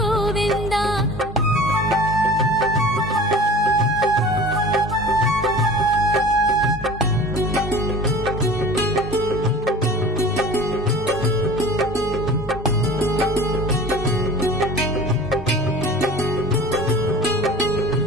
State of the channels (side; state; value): both; normal; correlation 0.40